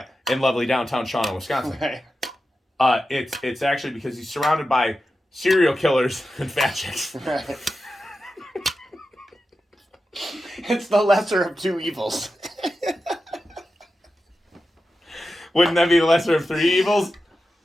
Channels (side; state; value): both; normal; correlation 0.91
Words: in lovely downtown Shawano, Wisconsin. Right. It's actually because he's surrounded by serial killers and fat chicks. Right. It's the lesser of two evils. Wouldn't that be the lesser of three evils?